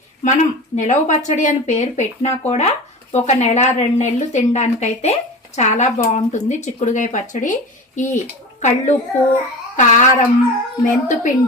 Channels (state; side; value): normal; both; correlation 0.32